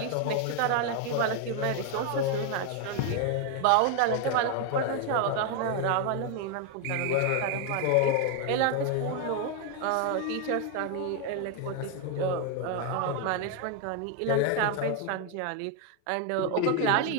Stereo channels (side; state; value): both; different; correlation 0.01